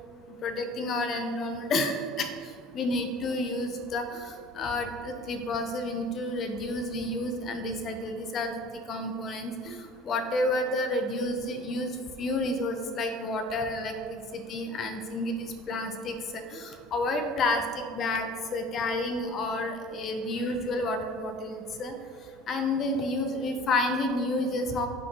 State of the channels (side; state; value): both; normal; correlation 0.45